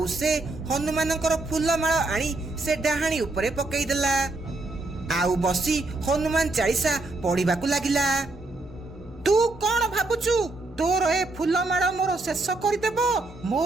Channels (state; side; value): quieter; left; 3.1 dB